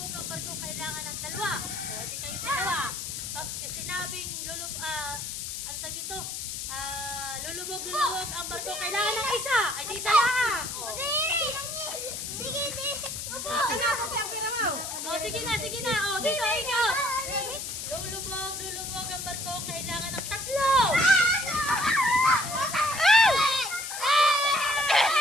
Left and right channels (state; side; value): noise; left; hiss, 6 dB below the sound